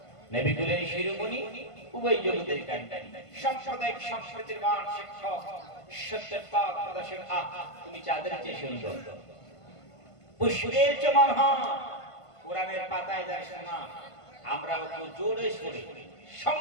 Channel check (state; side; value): late; right; 1.5 ms